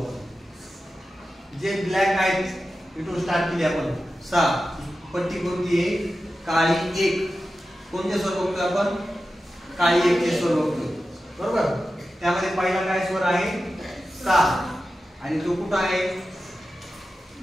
जे ब्लॅक आहेत इथून स्टार्ट केली आपण 6. पट्टी कोणती आहे, काळी 1. कोणते स्वर बघतोय आपण, काळी 1 चे स्वर बघतोय, बरोबर. त्यामध्ये पहिला काय स्वर आहे, सा. आणि तो कुठं आहे,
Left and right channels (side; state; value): both; normal; correlation 0.93